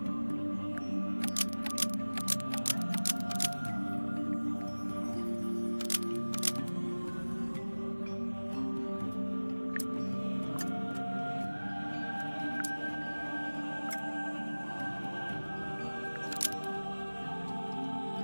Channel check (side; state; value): both; inverted; correlation -1.00